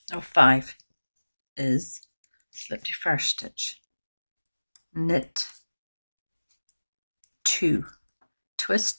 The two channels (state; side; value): inverted; both; correlation -1.00